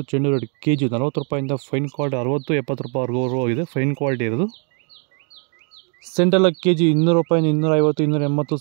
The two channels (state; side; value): quieter; left; 39.3 dB